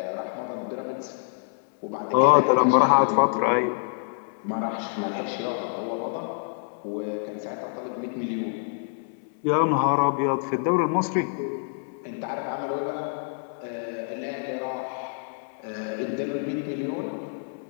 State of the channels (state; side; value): silent; right; digital silence